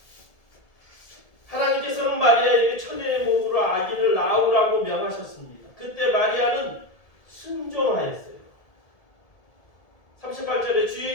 하나님께서는 마리아에게 처녀의 몸으로 아기를 낳으라고 명하셨습니다. 그때 마리아는 순종하였어요. 38절에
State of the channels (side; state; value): right; late; 1.7 ms